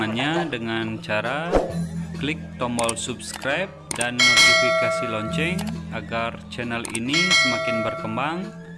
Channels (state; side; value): identical; both; correlation 1.00